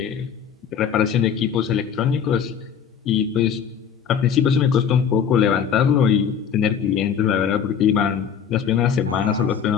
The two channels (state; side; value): quieter; right; 7.7 dB